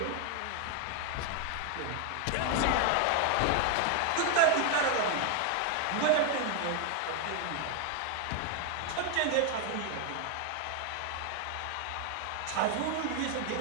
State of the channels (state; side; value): different; both; correlation 0.01